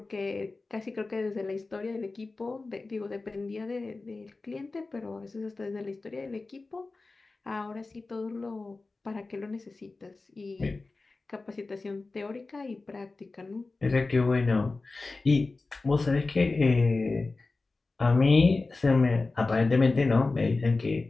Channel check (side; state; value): right; quieter; 3.6 dB